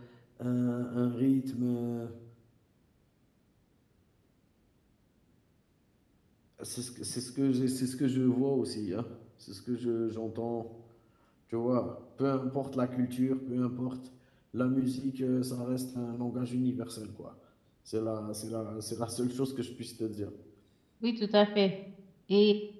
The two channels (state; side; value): identical; both; correlation 1.00